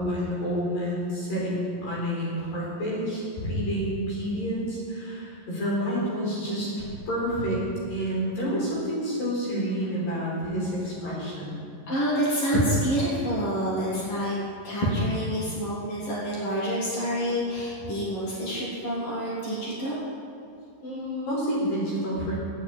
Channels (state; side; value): late; right; 11 ms